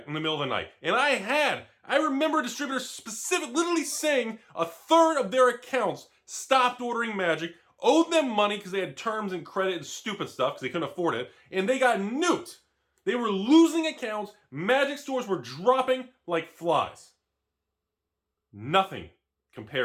in the middle of the night. And I remember distributors literally saying a third of their accounts stopped ordering Magic, owed them money because they had terms and credit and stupid stuff because they couldn't afford it, and they got nuked. They were losing accounts. Magic stores were dropping like flies. Nothing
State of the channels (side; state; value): both; identical; correlation 1.00